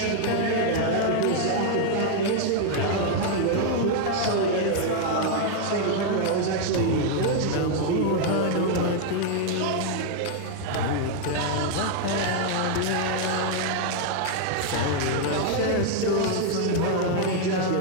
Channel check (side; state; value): both; different; correlation 0.00